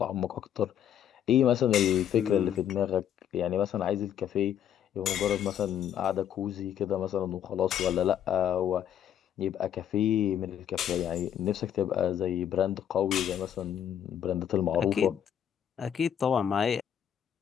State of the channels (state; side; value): quieter; right; 9.7 dB